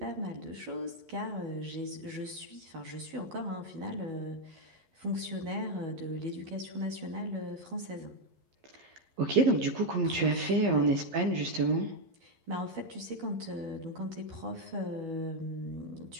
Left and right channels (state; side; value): late; left; 11 ms